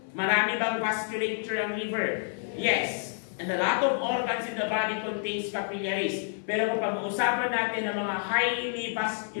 Marami bang vasculature ang liver? Yes. And a lot of organs in the body contains capillaries. Pero kung pag-uusapan natin ng mga highly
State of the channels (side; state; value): right; silent; 59 dB below the other